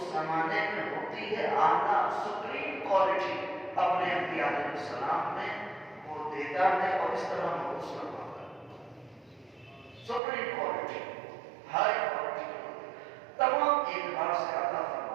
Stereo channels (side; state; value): left; drops out; at 10.2 s